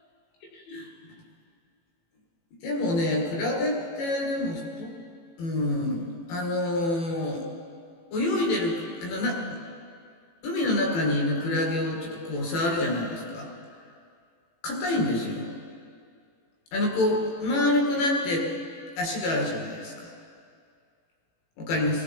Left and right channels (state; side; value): late; right; 18 ms